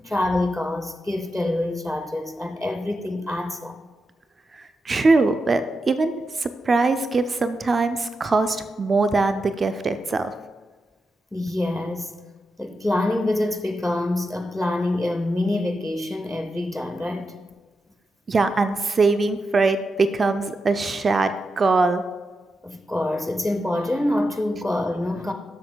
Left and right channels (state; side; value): normal; both; correlation 0.88